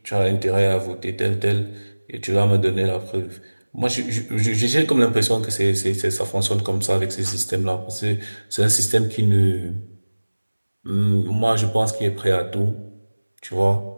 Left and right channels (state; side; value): inverted; both; correlation -1.00